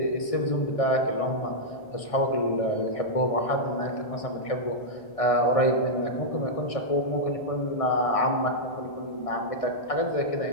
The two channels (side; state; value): right; late; 1.6 ms